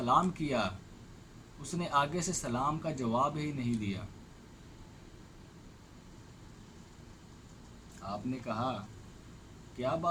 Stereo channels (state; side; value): identical; both; correlation 1.00